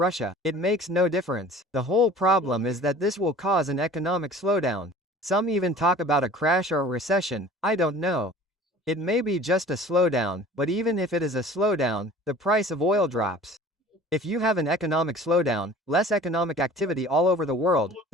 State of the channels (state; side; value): normal; both; correlation 0.45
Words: It makes no difference. The whole problem is that this will cause an economic slowdown. Some even talk about a crash or a recession, I don't know. It may be just a slowdown, but even if it is a slowdown, the price of oil drops. If you have an economic slowdown, less economic activity all over the world,